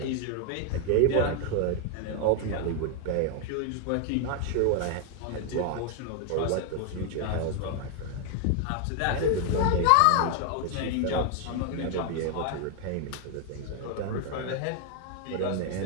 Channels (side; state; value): both; different; correlation 0.00